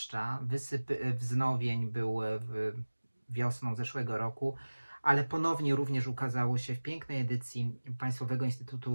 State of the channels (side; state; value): both; inverted; correlation -1.00